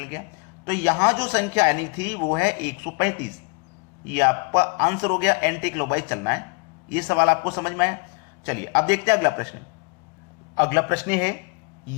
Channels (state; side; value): quieter; right; 34.5 dB